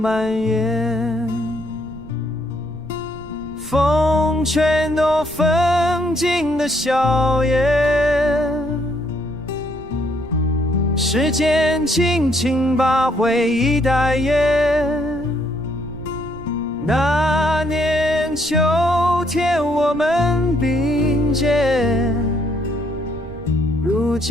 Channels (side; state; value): right; noise; rumble, 17 dB below the sound